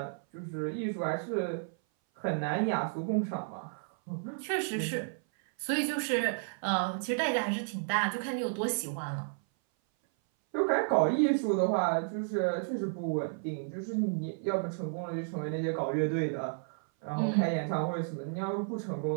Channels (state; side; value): silent; left; 56 dB below the other